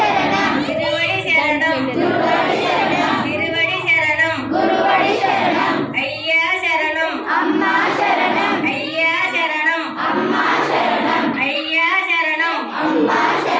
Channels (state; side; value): identical; both; correlation 1.00